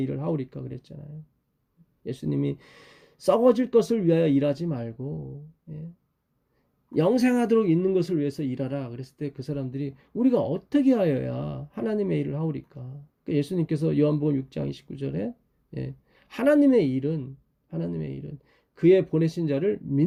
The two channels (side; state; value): both; identical; correlation 1.00